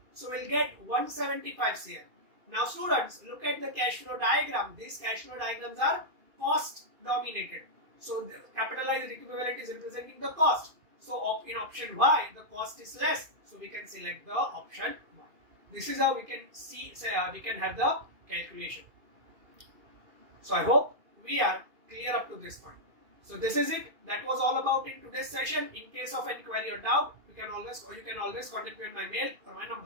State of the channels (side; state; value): left; late; 2.4 ms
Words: So we'll get 175 CR. Now students, look at the cash flow diagram. These cash flow diagrams are cost dominated. So the capitalized equivalent is representing the cost. So in option Y, the cost is less. So we can select the option Y. This is how we can we can have the calculation. So I hope we are clear up to this point. So this is it. That was all about in today's session. In case of any query or doubt, you can always contact me on my mail or my